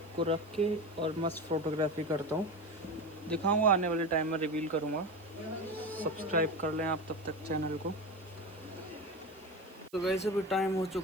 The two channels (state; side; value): noise; right; hiss, 27 dB below the sound